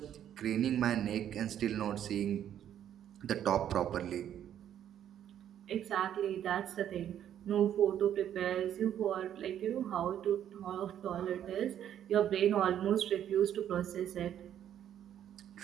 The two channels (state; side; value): quieter; left; 10.3 dB